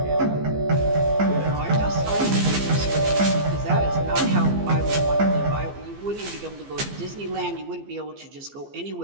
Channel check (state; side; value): late; left; 15 ms